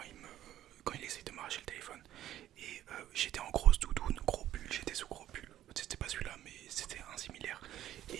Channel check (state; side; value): quieter; left; 12.6 dB